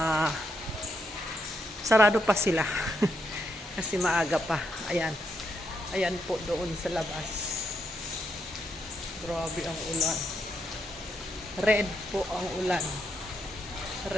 sarado pa sila. Kasi maaga pa. Ayan. Ayan po doon sa labas. Grabe ang ulan. Red po ang ulan.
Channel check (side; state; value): both; normal; correlation 0.79